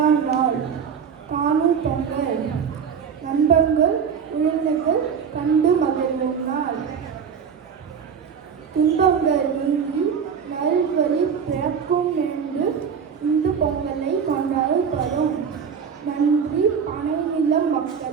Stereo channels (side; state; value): left; quieter; 6.9 dB